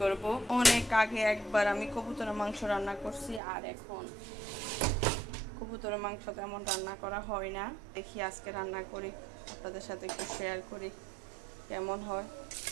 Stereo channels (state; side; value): drops out; left; at 3.4 s